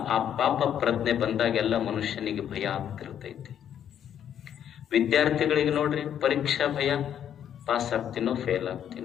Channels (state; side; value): quieter; right; 9.5 dB